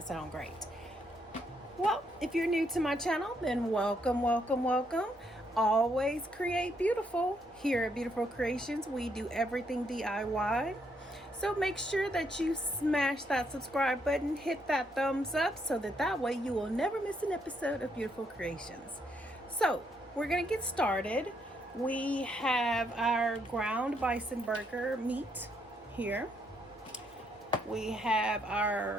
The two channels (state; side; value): normal; both; correlation 0.74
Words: sound great? Well, if you're new to my channel, then welcome, welcome, welcome. Always create beautiful. Here at Beautiful Creations, we do everything DIY. So make sure that you smash that subscribe button, hit that thumbs up so that way you will never miss an episode of Beautiful Creations. So we're gonna get started. We have our ground bison burger meat here. We have